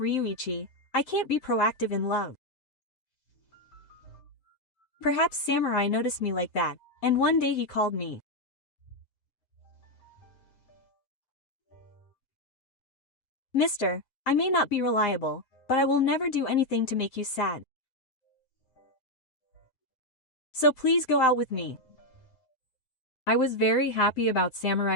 I can't be proactive in love. Perhaps Samurai noticed me like that, and one day he called me. Mister, I may not be reliable, but I will never do anything to make you sad. So please go out with me. I was very happy about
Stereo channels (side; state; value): right; late; 7.6 ms